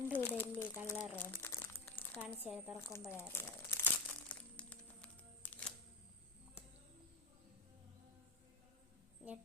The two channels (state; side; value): quieter; right; 3.4 dB